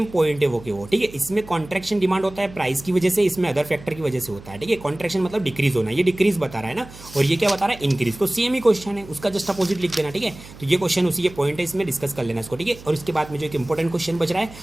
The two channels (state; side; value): noise; right; hum, 18 dB below the sound